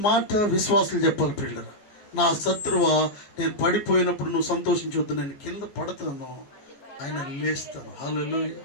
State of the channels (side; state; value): right; late; 15 ms